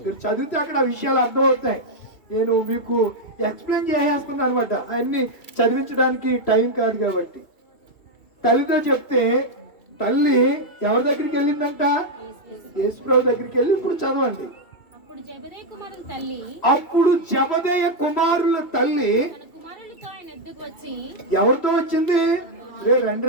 మీరు చదివితే అక్కడ ఆ విషయాలు అర్థమవుతాయి. నేను మీకు ఎక్స్ప్లెయిన్ చేసేస్తున్నాను అనమాట, అవన్నీ చదివించడానికి టైం కాదు కాబట్టి. తల్లితో చెప్తే తల్లి ఎవరి దగ్గరికి వెళ్ళిందంట? యేసుప్రభు దగ్గరికి వెళ్ళి, ఇప్పుడు చదవండి. అప్పుడు జబదేయ కుమారుల తల్లి ఎవరితో వచ్చింది? రే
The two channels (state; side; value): late; right; 2.7 ms